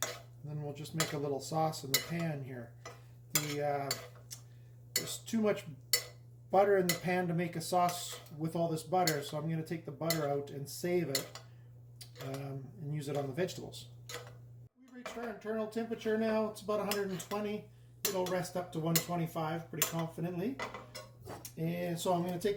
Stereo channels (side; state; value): both; identical; correlation 1.00